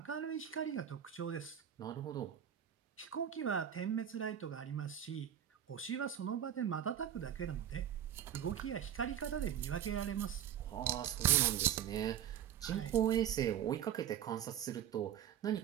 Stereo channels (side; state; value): left; quieter; 10.0 dB